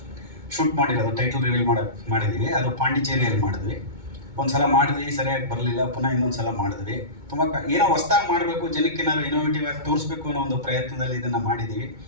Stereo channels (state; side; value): late; left; 2.2 ms